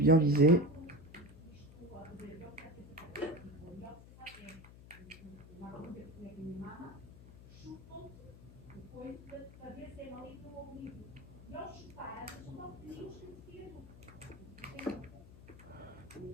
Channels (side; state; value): left; noise; hum, 17 dB below the sound